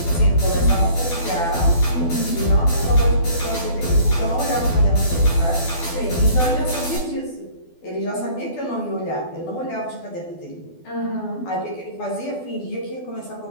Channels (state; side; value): late; right; 12 ms